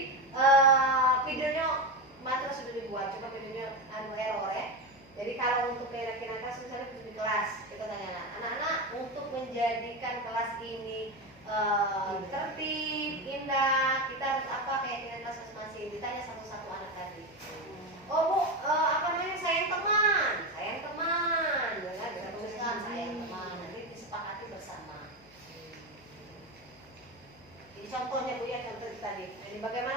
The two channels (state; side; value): noise; left; hum, 26 dB below the sound